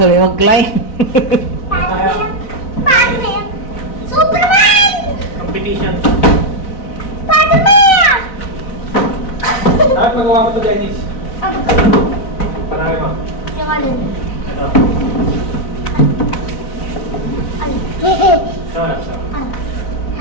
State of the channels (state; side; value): late; right; 3.9 ms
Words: mag-line. Spider-Man! Superman! Competition. Spider-Man! Dapat magawa mo to, Dennis. Ano? Panay mo. Yung alin? Ito. Alin? Sarap, sarap.